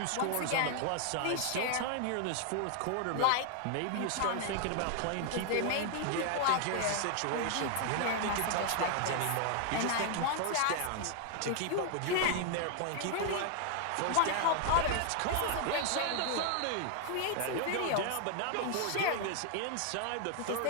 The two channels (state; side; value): different; both; correlation 0.00